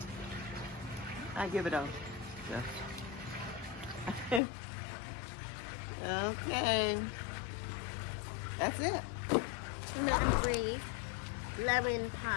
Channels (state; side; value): drops out; right; at 4.4 s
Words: I give it a yes. Okay. That's it. Nut-free lemon